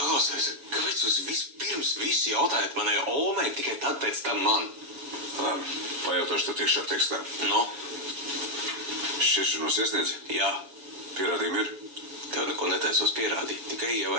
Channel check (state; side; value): late; left; 7.1 ms